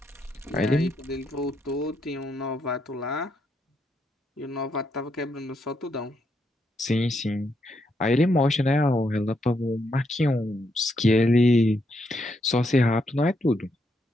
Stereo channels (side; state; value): both; normal; correlation 0.78